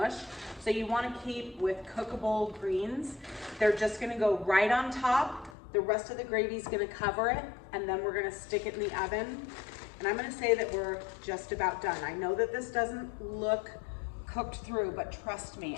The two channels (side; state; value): right; drops out; at 5.6 s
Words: So you wanna keep with cookable greens. They're just gonna go right on top. The rest of the gravy is gonna cover it, and then we're gonna stick it in the oven. And I'm gonna say that we're just about done. I know that this doesn't look cooked through, but trust me,